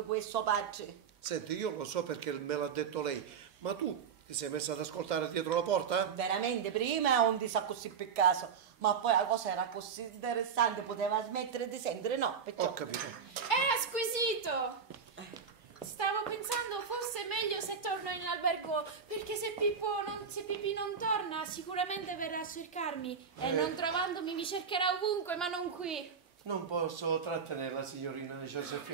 questo padre. Senti, io lo so perché me l'ha detto lei, ma tu ti sei messa ad ascoltare dietro la porta? Veramente, prima non ti sa così per caso, ma poi la cosa era così interessante, poteva smettere di sentire, no? Perciò... Ho capito. È squisito. Stavo pensando fosse meglio se torno in albergo, perché se Pipì non torna sicuramente verrà a cercarmi e non trovandomi mi cercherà ovunque, ma non qui. Non posso trattenerla, signorina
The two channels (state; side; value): quieter; left; 6.5 dB